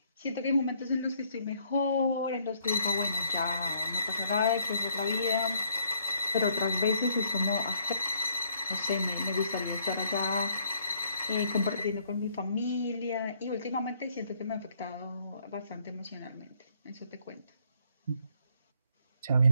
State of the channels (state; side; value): inverted; both; correlation -0.66